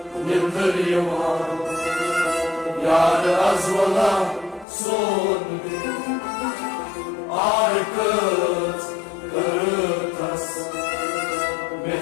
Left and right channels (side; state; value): right; drops out; at 4.7 s